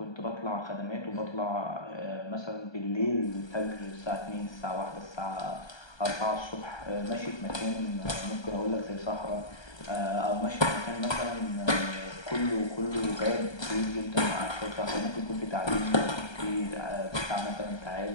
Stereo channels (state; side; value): late; right; 1.3 ms